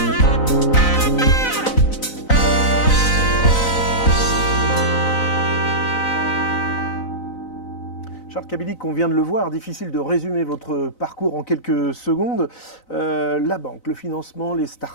Kabilik, on vient de le voir, difficile de résumer votre parcours en quelques secondes. La banque, le financement, les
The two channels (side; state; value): right; late; 4.0 ms